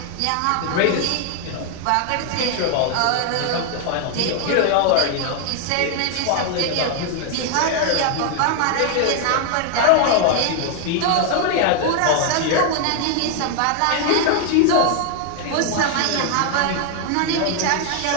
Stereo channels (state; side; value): different; both; correlation 0.00